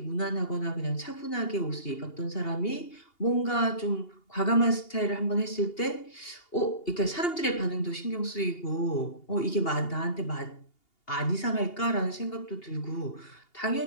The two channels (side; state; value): right; late; 2.8 ms